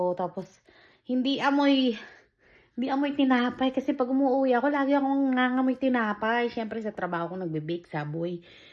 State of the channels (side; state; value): both; identical; correlation 1.00